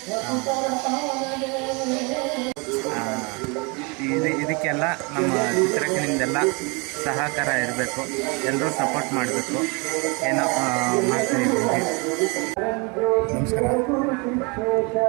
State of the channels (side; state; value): left; quieter; 30.4 dB